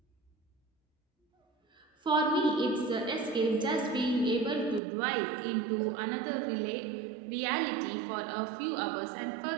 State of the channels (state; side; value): drops out; left; at 4.8 s